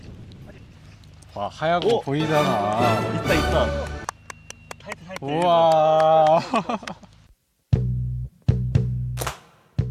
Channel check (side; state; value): both; identical; correlation 1.00